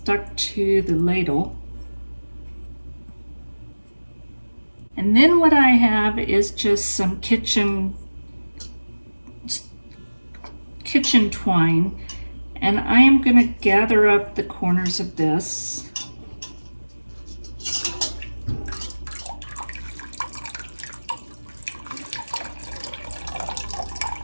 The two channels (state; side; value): inverted; both; correlation -1.00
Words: to the ladle. And then what I have is just some kitchen twine, and I am going to gather up the corners of this.